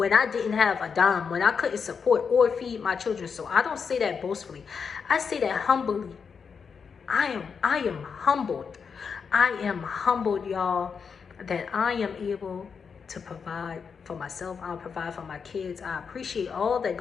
I didn't have a dime, when I couldn't support or feed my children. So I don't say that boastfully. I say that humbly. I am humbled. I am humbled, y'all, that I am able to provide for myself. I'll provide for my kids. I appreciate all that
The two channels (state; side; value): quieter; right; 6.0 dB